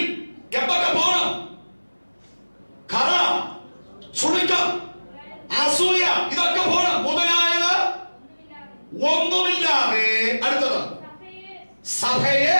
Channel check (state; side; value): inverted; both; correlation -1.00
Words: എന്തൊക്കെ പോകണം? കറ, ചുളുക്കം, അസൂയ, ഇതൊക്കെ പോകണം. മുതലായത് ഒന്നുമില്ലാതെ. അടുത്തത് സഭയെ